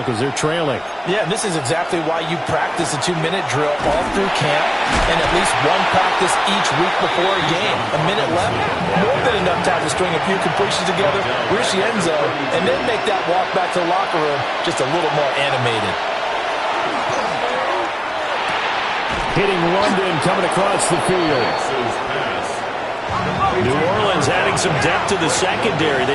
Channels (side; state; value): both; identical; correlation 1.00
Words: because they're trailing. Yeah, this is exactly why you practice a 2-minute drill all through camp and at least one practice each week before a game. A minute left, more than enough time to string a few completions together, reach the end zone, and then make that walk back to the locker room just a little more animated. Hitting London, coming across the field. New Orleans adding some depth to the secondary.